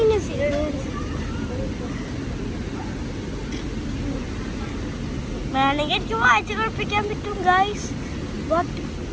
വേണമെങ്കിൽ എനിക്ക് വായിച്ച് കളിപ്പിക്കാൻ പറ്റും ഗൈസ്. ബട്ട്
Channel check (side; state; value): both; identical; correlation 1.00